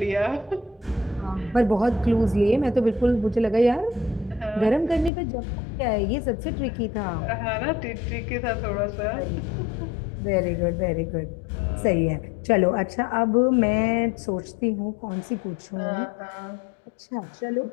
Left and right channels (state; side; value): drops out; right; at 5.1 s